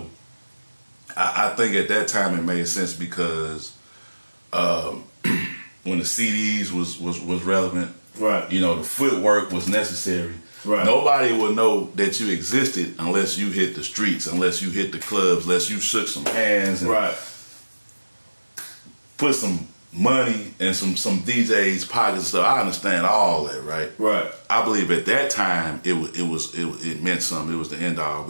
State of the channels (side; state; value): both; inverted; correlation -1.00